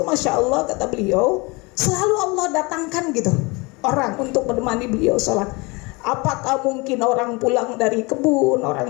Masya Allah, kata beliau, selalu Allah datangkan gitu orang untuk menemani beliau sholat. Apakah mungkin orang pulang dari kebun,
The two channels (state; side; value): quieter; right; 26.5 dB